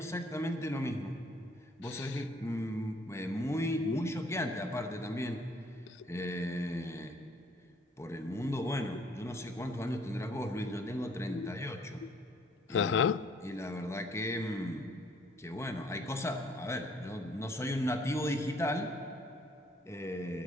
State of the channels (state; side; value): normal; both; correlation 0.61